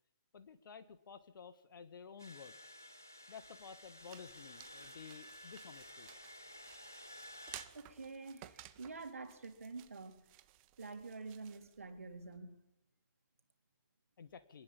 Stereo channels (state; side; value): inverted; both; correlation -0.61